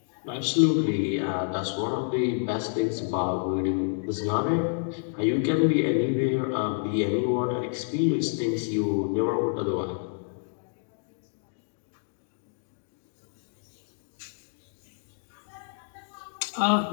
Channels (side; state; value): right; silent; digital silence